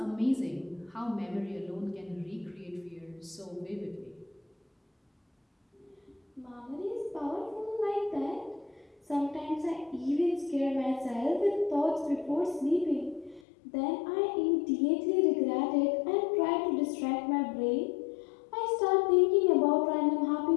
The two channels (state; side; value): drops out; right; at 13.4 s